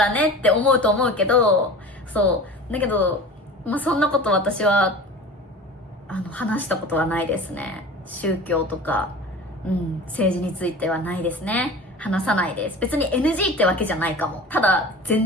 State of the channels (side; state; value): both; normal; correlation 0.37